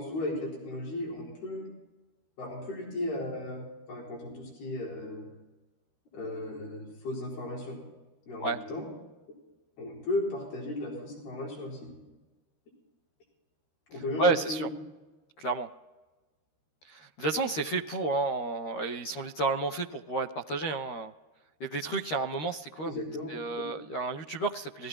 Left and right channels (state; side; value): late; right; 13 ms